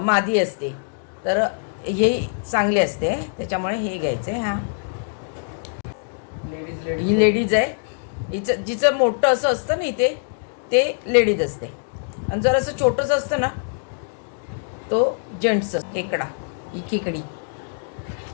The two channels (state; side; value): silent; right; digital silence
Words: मादी असते तर हे चांगले असते, त्याच्यामुळे हे घ्यायचे। हा ही लेडीज आहे, जिचं मोठं असं असतं ना इथे ते लेडीज असते, आणि जर असं छोटंच असतं ना तो जेंट्स खेकडा, ही खेकडी।